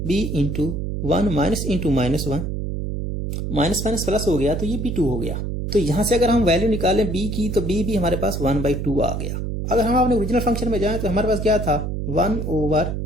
b into 1 minus into minus 1, minus minus plus हो गया तो ये b2 हो गया। तो यहां से अगर हम वैल्यू निकालें b की तो b भी हमारे पास 1/2 आ गया। अगर हम अपने ओरिजिनल फंक्शन में जाएं तो हमारे पास क्या था, 1 ओवर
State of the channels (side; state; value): right; noise; hum, 3 dB below the sound